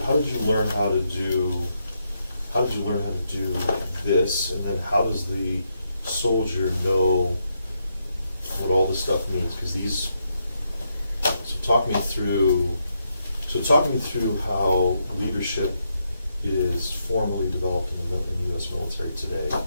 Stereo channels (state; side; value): inverted; both; correlation -0.80